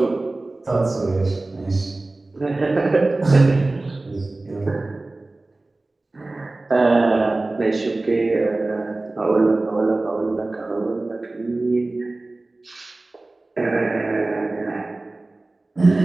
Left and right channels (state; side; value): quieter; left; 3.0 dB